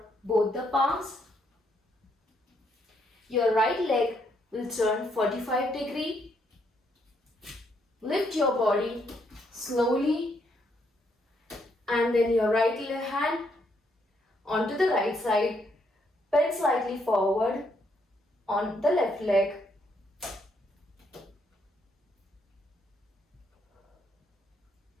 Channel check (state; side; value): normal; both; correlation 0.74